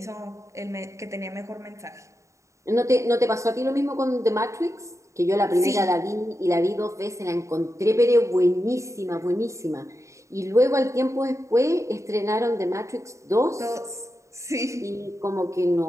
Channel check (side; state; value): left; late; 0.15 ms